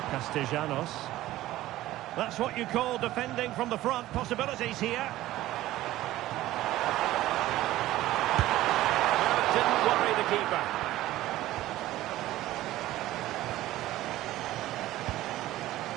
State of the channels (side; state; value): left; quieter; 15.6 dB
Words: Castellanos. That's what you call defending from the front. Possibilities here. Well, it didn't worry the keeper.